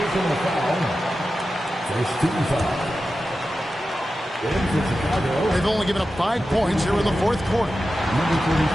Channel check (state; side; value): normal; both; correlation 0.92